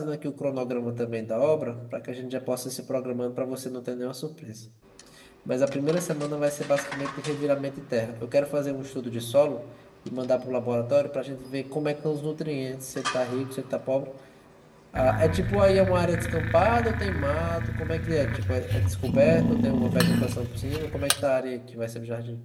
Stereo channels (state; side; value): identical; both; correlation 1.00